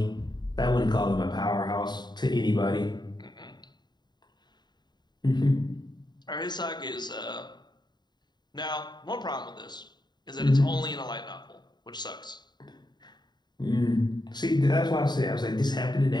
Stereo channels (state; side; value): late; right; 0.21 ms